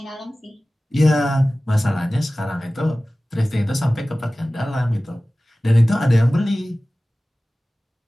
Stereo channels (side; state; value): both; normal; correlation 0.97